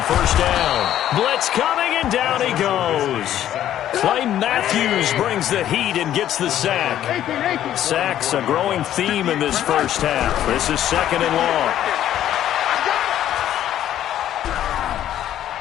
first down. Blitz coming, and down he goes. Clay Matthews brings the heat and gets the sack. Sacks a growing theme in this first half. This is second and long.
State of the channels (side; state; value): right; quieter; 11.6 dB